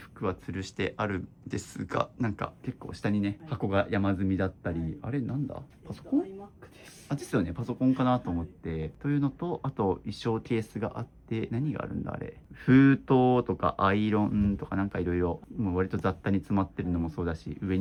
は吊るしてあるんですが、なんか結構下にね、箱が山積みだったり、あれなんだパソコンクです。あ、ですよね。パソコンかなと思って。というのと、あと衣装ケースがあって、何があるんだあれ。封筒とかアイロンとかなんかいろいろ、もう割と雑多に詰まってるのもそうだし、上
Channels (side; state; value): both; identical; correlation 1.00